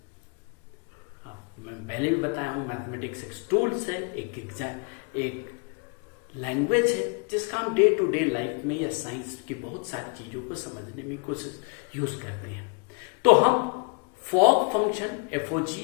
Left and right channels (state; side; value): quieter; right; 35.0 dB